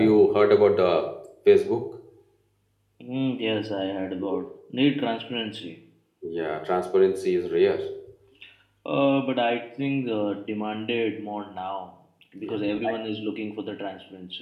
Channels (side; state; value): both; identical; correlation 1.00